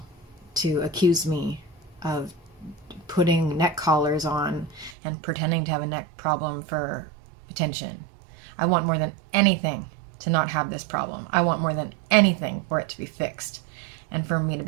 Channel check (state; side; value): drops out; left; at 5.0 s